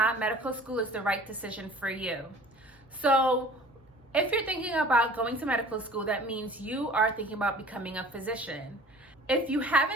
medical school is the right decision for you. So, if you're thinking about going to medical school, that means you are thinking about becoming a physician. If you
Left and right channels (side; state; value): both; normal; correlation 0.46